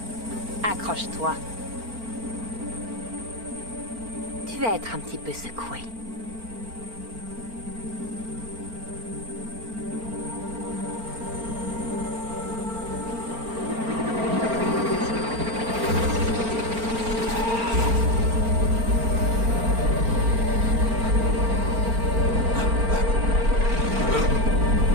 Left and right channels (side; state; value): left; late; 4.4 ms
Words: Accroche-toi. Tu vas être un petit peu secoué.